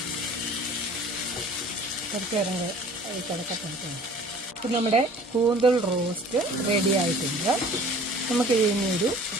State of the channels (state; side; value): normal; both; correlation 0.48